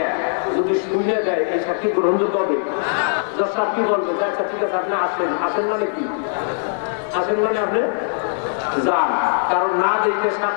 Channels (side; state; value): right; silent; 65 dB below the other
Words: যদি শুনে দেয়, এই সাক্ষী গ্রহণযোগ্য হবে? জজ সাহেব কি বলবে? আচ্ছা ঠিক আছে, আপনি আসেন। আসেন মানে কি? আসেন মানে আপনি যান। কারণ না দেখে